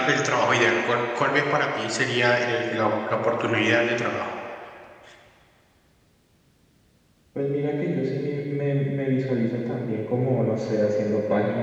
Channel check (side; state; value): both; identical; correlation 1.00